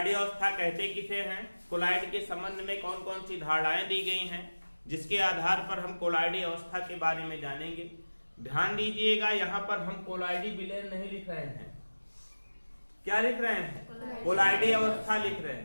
अवस्था कहते किसे हैं? कोलाइड के संबंध में कौन कौन सी धारणाएं दी गई हैं जिसके आधार पर हम कोलाइडी अवस्था के बारे में जानेंगे। ध्यान दीजिएगा, यहाँ पर हम कोलाइडी विलयन नहीं लिख रहे हैं। क्या लिख रहे हैं? कोलाइडी अवस्था लिख रहे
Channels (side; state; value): both; inverted; correlation -1.00